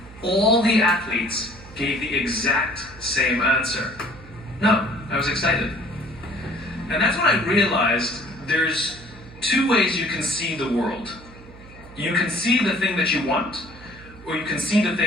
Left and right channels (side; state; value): right; noise; hum, 20 dB below the sound